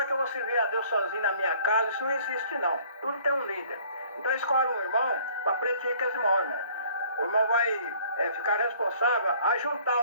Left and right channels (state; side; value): inverted; both; correlation -0.56